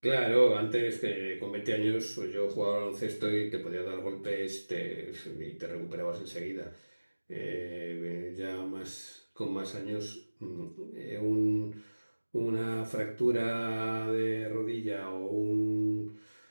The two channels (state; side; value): inverted; both; correlation -1.00